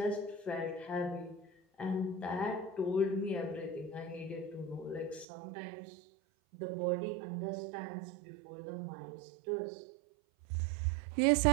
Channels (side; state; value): left; drops out; at 5.2 s